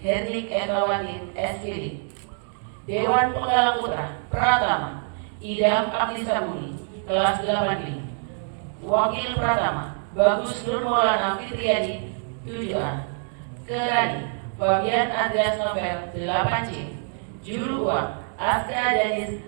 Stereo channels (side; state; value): left; silent; 58 dB below the other